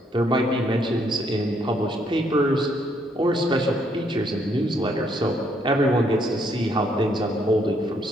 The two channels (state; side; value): normal; both; correlation 0.71